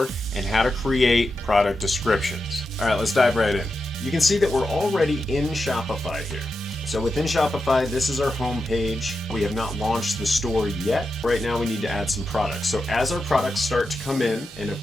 and how to create product descriptions. All right, let's dive right in. You can see that we're already in Shopify here. So within Shopify, this is our home page. We have not launched the store yet. Right now we need to add some products. So as our products start to come in, and of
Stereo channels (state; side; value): normal; both; correlation 0.88